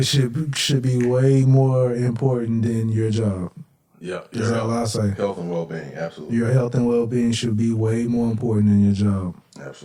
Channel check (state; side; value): identical; both; correlation 1.00